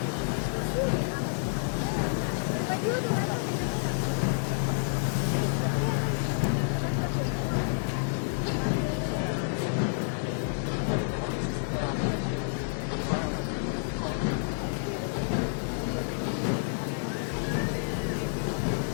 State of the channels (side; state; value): right; silent; digital silence